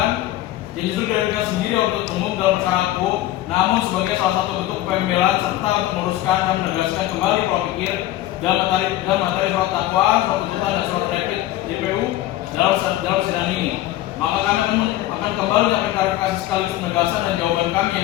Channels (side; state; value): right; quieter; 14.8 dB